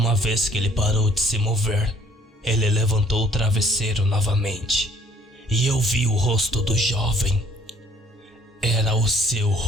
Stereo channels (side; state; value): both; normal; correlation 0.59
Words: vez que ele parou de se mover, ele levantou o travesseiro novamente, e eu vi o rosto do jovem. Era o seu